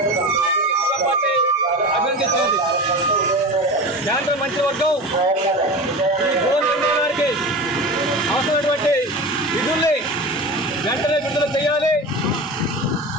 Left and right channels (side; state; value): both; normal; correlation 0.30